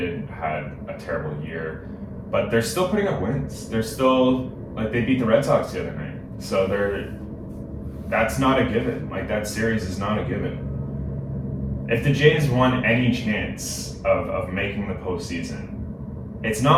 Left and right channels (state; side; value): identical; both; correlation 1.00